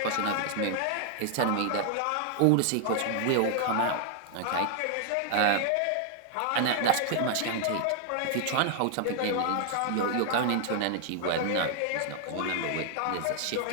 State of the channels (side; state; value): both; different; correlation 0.00